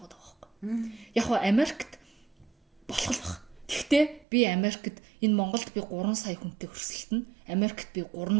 байхгүй. Яг нь Америкт болох л баг. Тэгвэл би Америкт энэ Монголд би 3 сая хүнтэй өрсөлдөн, Америкт би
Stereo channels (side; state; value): left; drops out; at 4.2 s